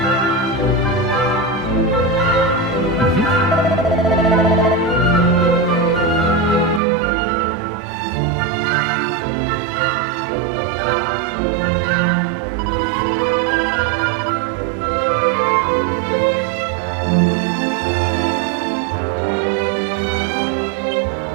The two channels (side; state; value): left; drops out; at 6.8 s